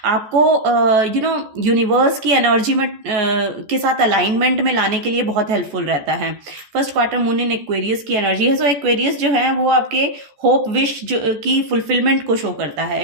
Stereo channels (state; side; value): late; left; 14 ms